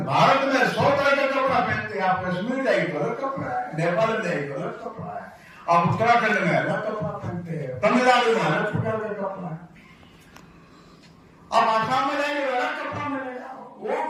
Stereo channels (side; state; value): both; identical; correlation 1.00